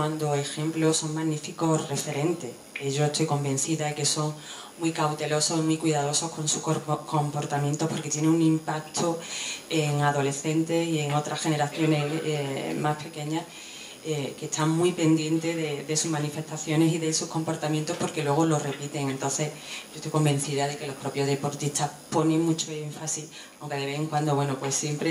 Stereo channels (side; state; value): both; identical; correlation 1.00